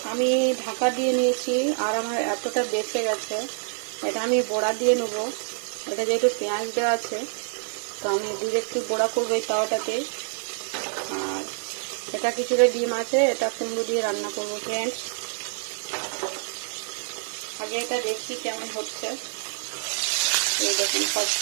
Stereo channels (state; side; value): silent; left; 61 dB below the other